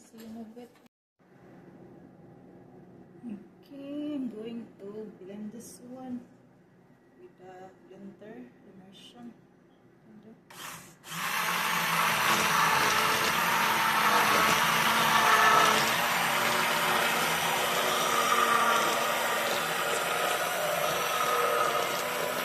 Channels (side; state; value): both; identical; correlation 1.00